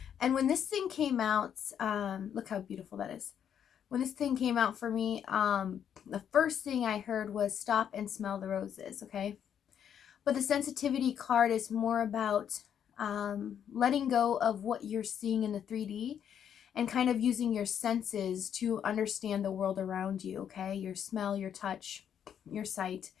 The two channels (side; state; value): right; quieter; 8.8 dB